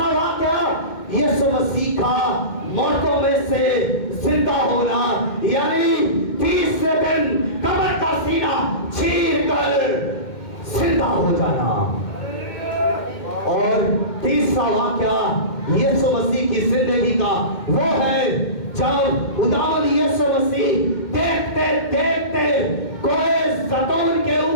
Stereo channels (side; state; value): right; late; 2.2 ms